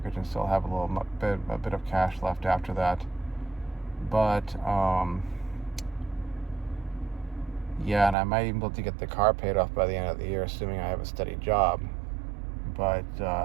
and still have a bit of cash left after that. But Yeah, and I might even be able to get the car paid off by the end of the year, assuming I have a steady job. But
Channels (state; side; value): drops out; left; at 8.2 s